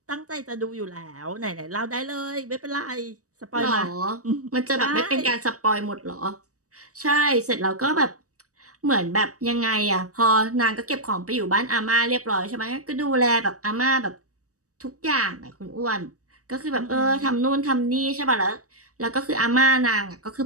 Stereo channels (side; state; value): left; late; 0.66 ms